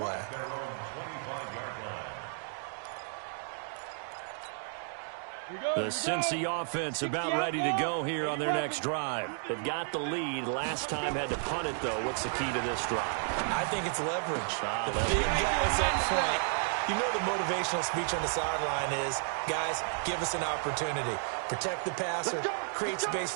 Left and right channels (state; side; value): silent; left; 56 dB below the other